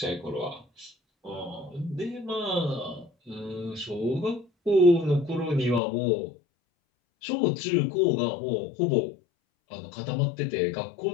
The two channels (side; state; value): right; drops out; at 5.8 s